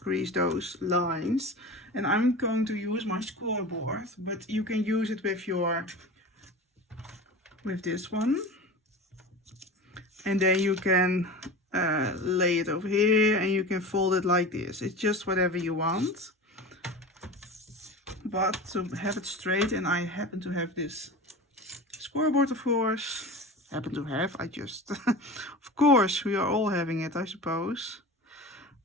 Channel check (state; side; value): normal; both; correlation 0.32